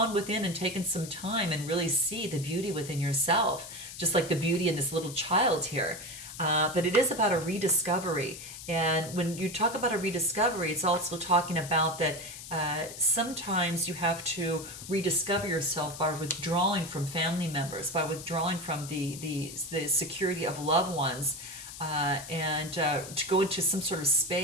within and taken some time and really see the beauty within yourself, just like the beauty in this little child here. But it is about a rediscovery. And when you talk about a rediscovery, it's also talking about that sometimes you have to rediscover yourself by withdrawing from family members, by withdrawing from the security of loved ones, and to go into some sort of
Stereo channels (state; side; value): noise; left; hiss, 12 dB below the sound